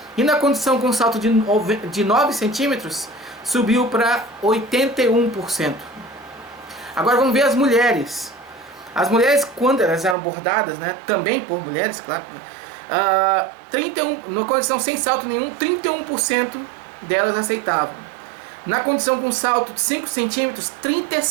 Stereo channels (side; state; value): left; drops out; at 10.2 s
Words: E na condição com salto de 9 centímetros, subiu para 81%. Agora vamos ver as mulheres. As mulheres, quando elas eram abordadas, né, também por mulheres, claro, na condição sem salto nenhum, 31% delas aceitavam. Na condição com salto de 5 centímetros,